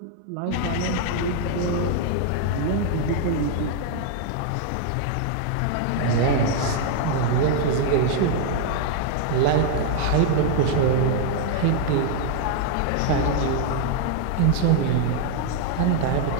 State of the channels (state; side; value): different; both; correlation 0.00